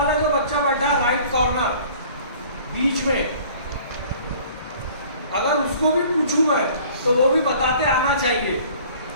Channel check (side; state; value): both; inverted; correlation -0.50